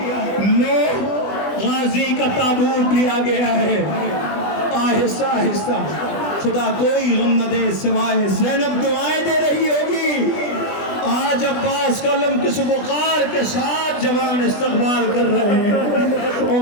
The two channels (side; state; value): right; late; 20 ms